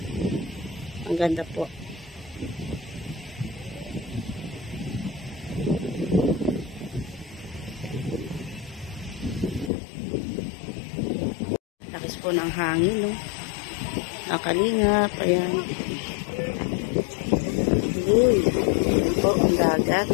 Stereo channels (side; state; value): right; drops out; at 9.7 s